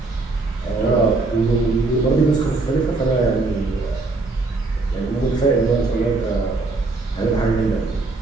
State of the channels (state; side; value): quieter; left; 3.5 dB